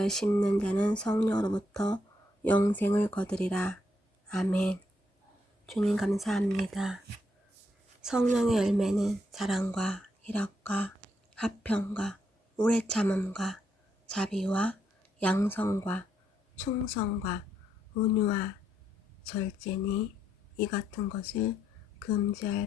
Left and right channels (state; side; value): normal; both; correlation 0.77